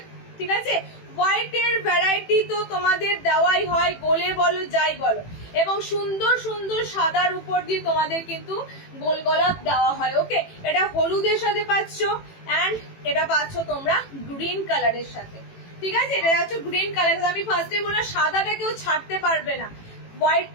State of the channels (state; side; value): late; right; 18 ms